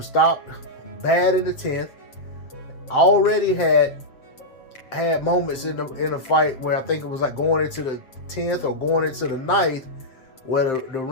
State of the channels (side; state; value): right; late; 7.6 ms